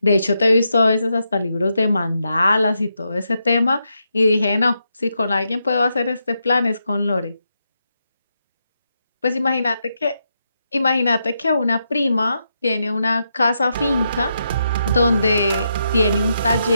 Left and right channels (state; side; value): inverted; both; correlation -0.83